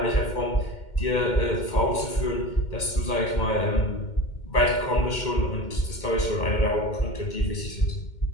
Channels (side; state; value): right; late; 2.1 ms